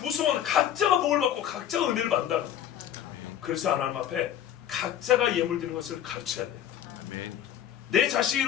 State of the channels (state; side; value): quieter; right; 10.4 dB